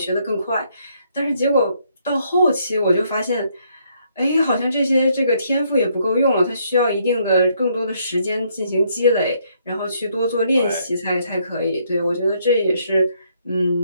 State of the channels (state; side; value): inverted; both; correlation -0.71